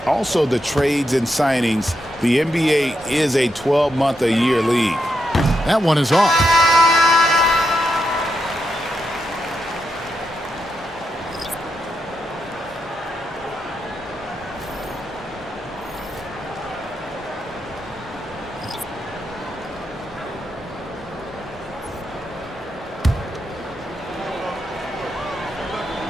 also the trades and signings. The NBA is a 12-month-a-year league. That one is off.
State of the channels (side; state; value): both; normal; correlation 0.84